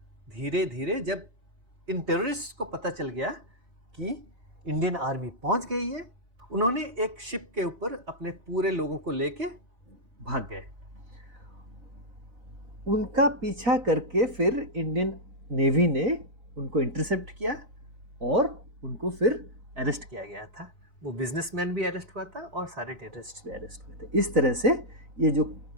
धीरे धीरे जब इन टेररिस्ट को पता चल गया कि इंडियन आर्मी पहुंच गई है, उन्होंने एक शिप के ऊपर अपने पूरे लोगों को लेके भाग गए। उनका पीछा करके फिर इंडियन नेवी ने उनको इंटरसेप्ट किया और उनको फिर अरेस्ट किया गया था। वो बिजनेसमैन भी अरेस्ट हुआ था और सारे टेररिस्ट भी अरेस्ट हुए थे। इस तरह से ये जो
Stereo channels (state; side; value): late; left; 4.0 ms